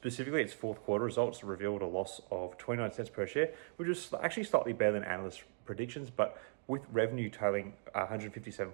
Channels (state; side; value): silent; left; 52 dB below the other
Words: its fourth quarter results revealed a loss of 29 cents per share, which was actually slightly better than analysts' predictions, but with revenue totaling